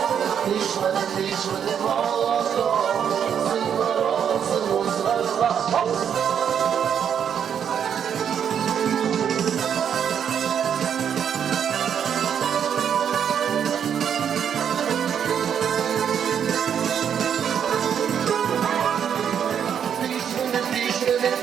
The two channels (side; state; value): left; quieter; 8.2 dB